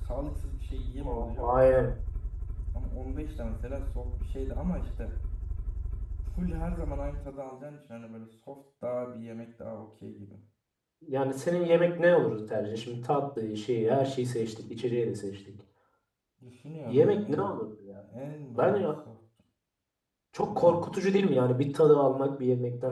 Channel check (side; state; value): both; identical; correlation 1.00